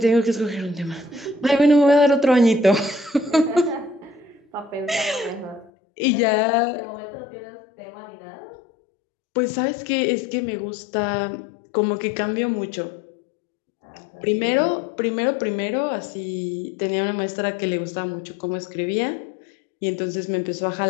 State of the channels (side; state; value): right; drops out; at 5.7 s